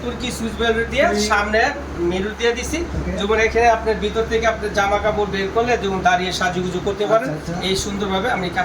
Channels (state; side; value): identical; both; correlation 1.00